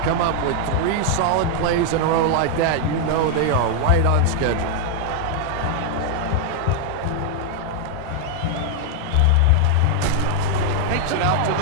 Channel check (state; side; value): different; both; correlation 0.00